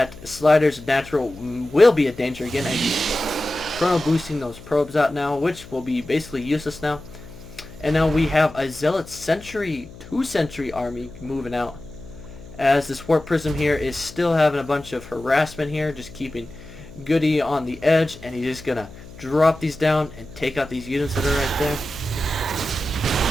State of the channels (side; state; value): left; noise; hum, 18 dB below the sound